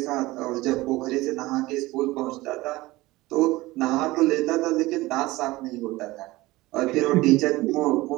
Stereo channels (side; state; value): left; quieter; 19.5 dB